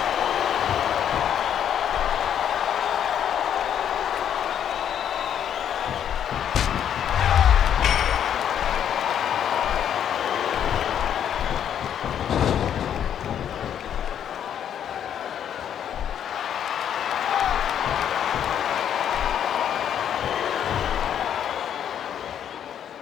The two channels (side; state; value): right; quieter; 9.3 dB